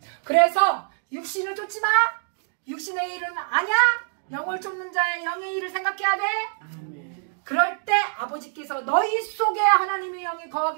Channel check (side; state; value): left; silent; 62 dB below the other